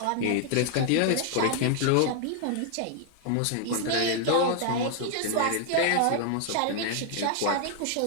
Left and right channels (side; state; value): both; different; correlation 0.00